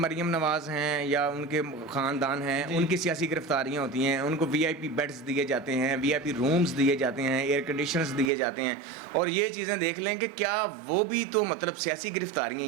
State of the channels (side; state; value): left; drops out; at 8.3 s